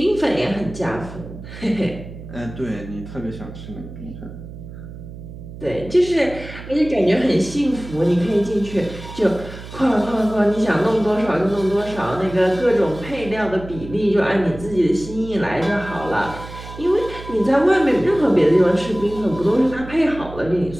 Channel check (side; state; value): right; noise; hum, 13 dB below the sound